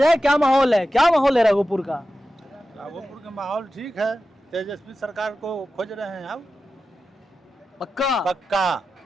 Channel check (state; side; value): normal; both; correlation 0.93